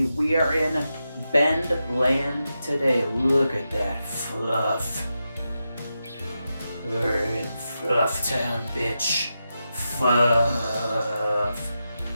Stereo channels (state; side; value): inverted; both; correlation -0.88